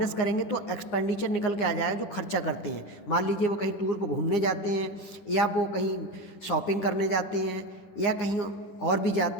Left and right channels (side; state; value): right; late; 9.8 ms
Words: करेंगे तो एक्सपेंडिचर निकल के आ जाएगा जो खर्चा करते हैं। मान लीजिए वो कहीं टूर पर घूमने जाते हैं, या वो कहीं शॉपिंग करने जाते हैं, या कहीं और भी